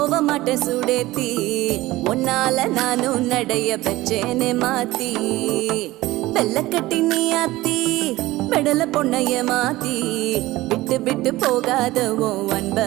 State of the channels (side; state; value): left; quieter; 18.2 dB